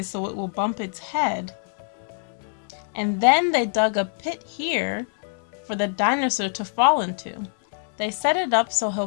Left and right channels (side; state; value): right; silent; 62 dB below the other